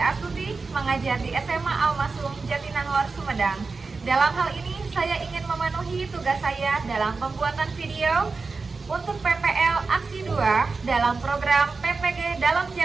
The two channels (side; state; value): left; quieter; 4.2 dB